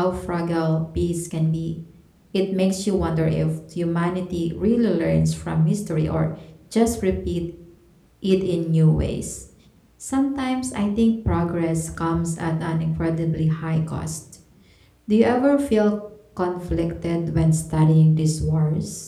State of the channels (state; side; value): identical; both; correlation 1.00